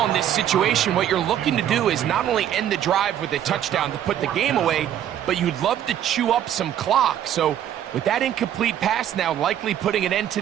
in this situation, what you're looking to do is not only end the drive with a touchdown to put the game away, but you'd love to chew up some clock. So with that incomplete pass now likely putting an end to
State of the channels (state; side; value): quieter; left; 10.7 dB